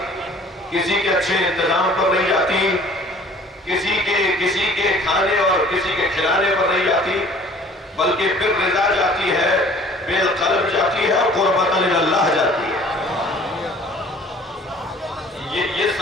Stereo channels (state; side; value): normal; both; correlation 0.51